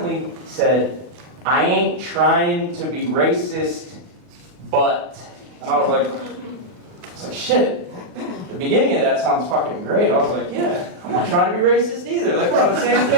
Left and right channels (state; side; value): late; left; 39 ms